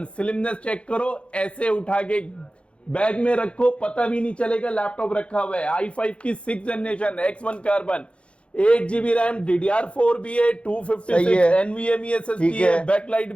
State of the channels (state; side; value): late; right; 0.059 ms